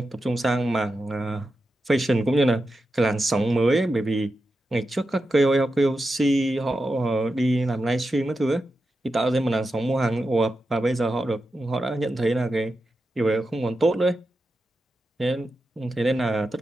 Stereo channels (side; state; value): both; normal; correlation 0.90